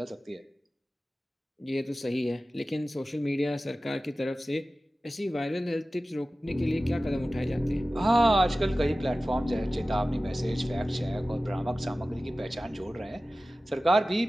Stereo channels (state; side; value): normal; both; correlation 0.96